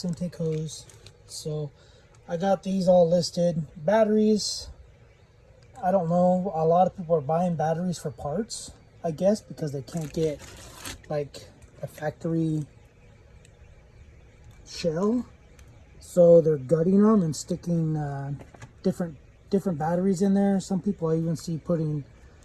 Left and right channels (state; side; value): identical; both; correlation 1.00